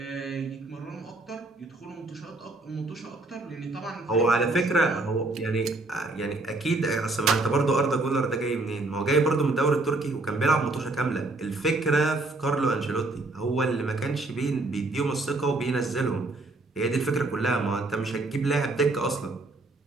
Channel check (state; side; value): quieter; left; 3.1 dB